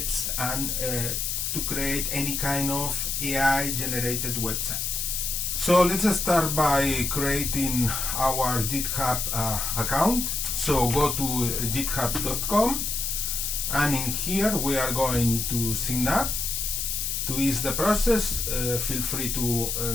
and to create any kind of AI generated website. So let's start by creating our GitHub account. So go to github.com, and in here we are going to sign up. To ease the process, feel free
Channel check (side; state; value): left; noise; hiss, 1 dB below the sound